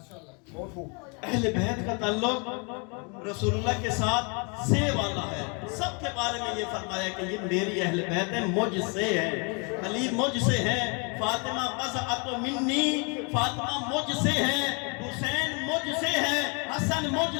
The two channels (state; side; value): quieter; right; 33.0 dB